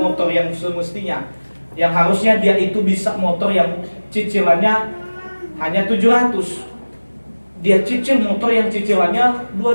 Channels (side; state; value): both; inverted; correlation -1.00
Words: yang semestinya, yang harusnya dia itu bisa motor yang cicilannya hanya 700. Dia cicil motor yang cicilannya